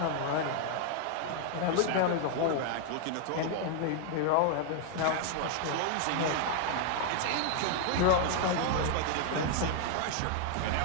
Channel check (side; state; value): both; different; correlation 0.00